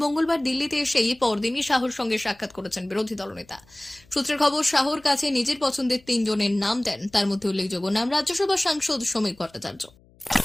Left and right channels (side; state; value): left; noise; hum, 29 dB below the sound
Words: মঙ্গলবার দিল্লিতে এসেই পরদিনই শাহর সঙ্গে সাক্ষাৎ করেছেন বিরোধী দলনেতা। সূত্রের খবর, শাহর কাছে নিজের পছন্দের 3 জনের নাম দেন। তার মধ্যে উল্লেখযোগ্য নাম রাজ্যসভা সাংসদ সমীর ভট্টাচার্য।